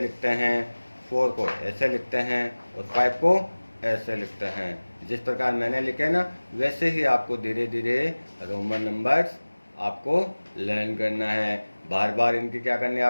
हैं, 4 को ऐसे लिखते हैं और 5 को ऐसे लिखते हैं। जिस प्रकार मैंने लिखे ना, वैसे ही आपको धीरे धीरे रोमन नंबर्स आपको लर्न करना है। बार बार इनकी क्या करनी है,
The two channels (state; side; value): inverted; both; correlation -1.00